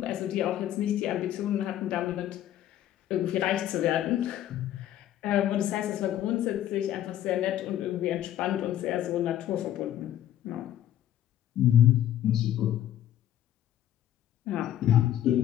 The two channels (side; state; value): right; quieter; 11.9 dB